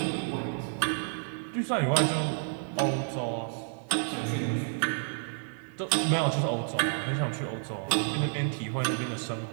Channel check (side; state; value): left; silent; digital silence